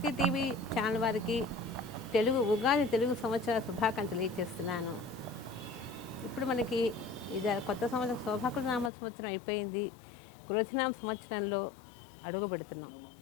టీవీ ఛానల్ వారికి ఉగాది తెలుగు సంవత్సర శుభాకాంక్షలు తెలియజేస్తున్నాను. ఇప్పుడు మనకి ఇది కొత్త సంవత్సరం శోభాకృతనామ సంవత్సరం అయిపోయింది. క్రోధినామ సంవత్సరంలో అడుగు పెడుతున్నాం.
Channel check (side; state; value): right; drops out; at 8.9 s